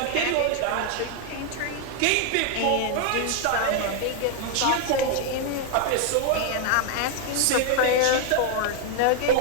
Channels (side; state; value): both; different; correlation 0.00